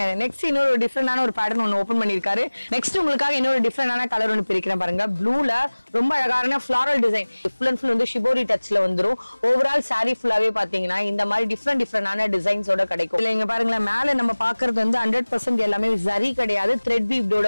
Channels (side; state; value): both; inverted; correlation -1.00